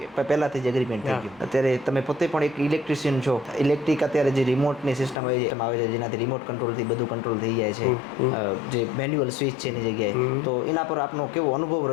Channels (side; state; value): right; drops out; at 5.2 s